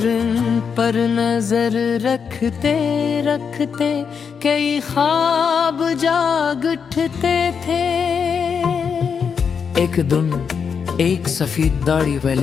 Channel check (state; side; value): quieter; right; 6.4 dB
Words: इन पर नजर रखते रखते कई ख्वाब जाग उठते थे। एक दिन एक सफेद दाढ़ी